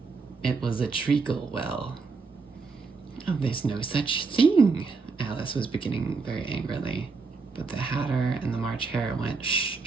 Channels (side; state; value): left; quieter; 4.5 dB